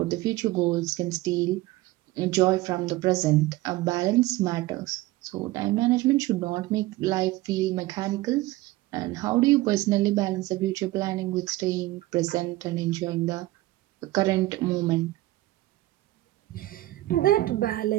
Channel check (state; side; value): quieter; left; 18.0 dB